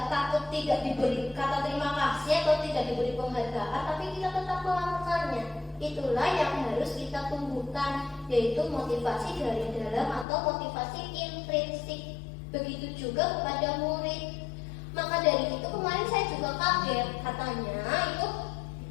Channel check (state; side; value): drops out; right; at 10.2 s